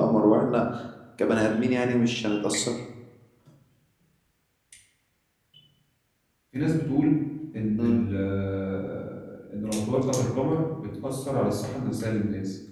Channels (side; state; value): both; identical; correlation 1.00